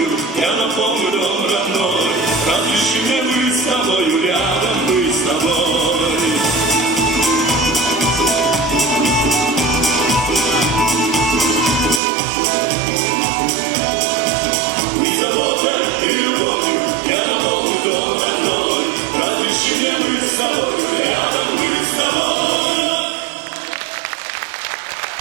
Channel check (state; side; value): drops out; left; at 12.0 s